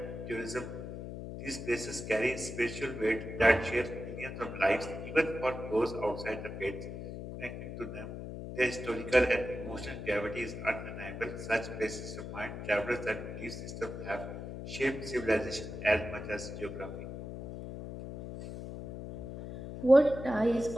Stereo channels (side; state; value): left; noise; hum, 8 dB below the sound